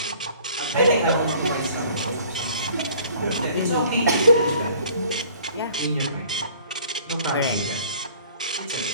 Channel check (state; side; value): inverted; both; correlation -0.53